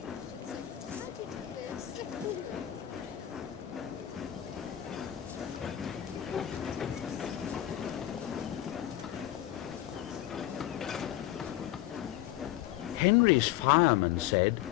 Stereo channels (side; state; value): right; quieter; 13.2 dB